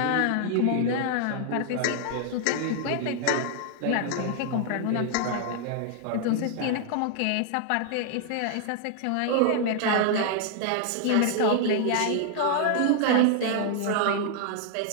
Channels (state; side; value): different; both; correlation 0.00